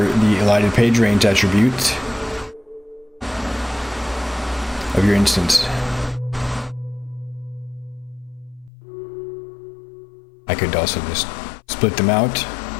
the elided page range attribute of your instance. I could also just split them out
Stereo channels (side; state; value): right; drops out; at 8.7 s